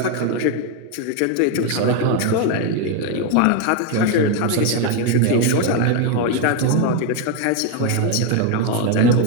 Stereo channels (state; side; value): different; both; correlation 0.02